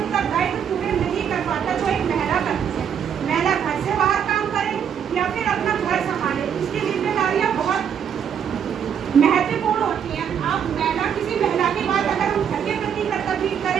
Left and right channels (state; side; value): quieter; left; 8.2 dB